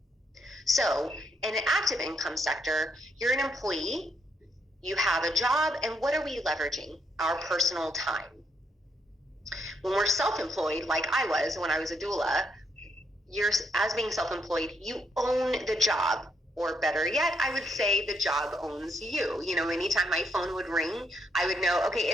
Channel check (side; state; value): both; normal; correlation 0.75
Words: So in an active income sector, you're an employee, you have a job, and what are we leveraging? Our personal time. When we're self-employed, like I was when I was a doula, as being self-employed, you own the job. Or better yet, I would say the job owns you. Anytime my phone would ring, I would know, okay,